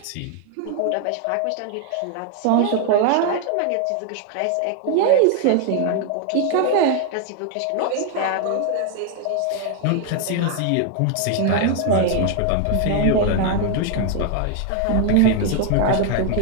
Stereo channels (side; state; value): both; different; correlation 0.01